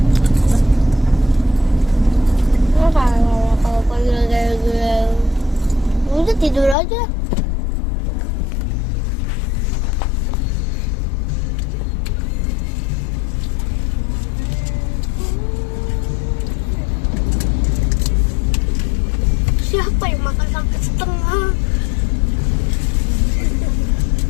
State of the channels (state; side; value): drops out; right; at 6.8 s